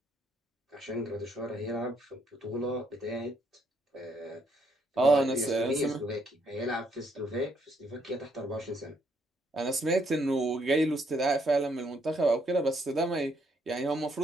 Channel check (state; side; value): normal; both; correlation 0.72